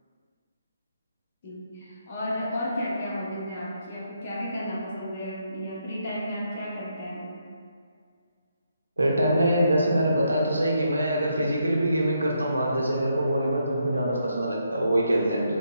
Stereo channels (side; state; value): both; inverted; correlation -0.78